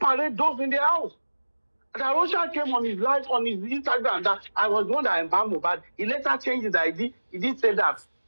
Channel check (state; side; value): inverted; both; correlation -1.00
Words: those in the house. And Arosha came on his live on his Instagram that I was the one that embalmed, but he later changed his ID. He did say that.